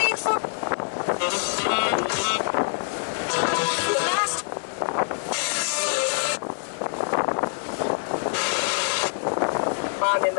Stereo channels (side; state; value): right; silent; digital silence